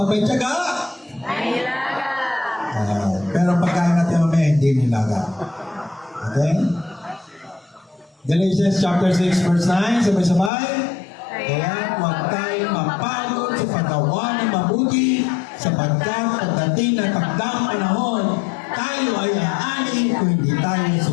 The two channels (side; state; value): right; drops out; at 10.5 s